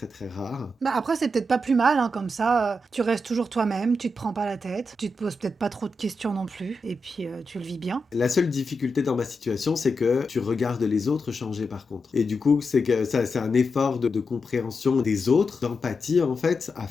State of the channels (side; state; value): both; normal; correlation 0.87